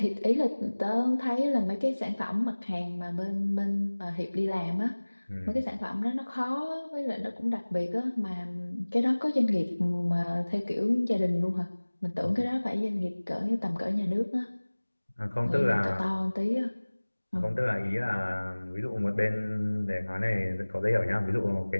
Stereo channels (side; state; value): both; inverted; correlation -1.00